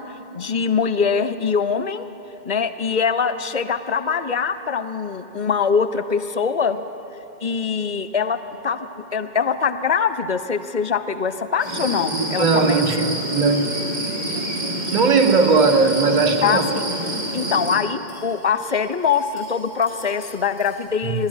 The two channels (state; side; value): late; left; 2.1 ms